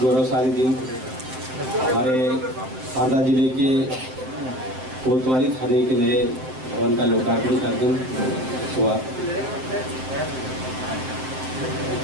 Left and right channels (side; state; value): left; late; 7.7 ms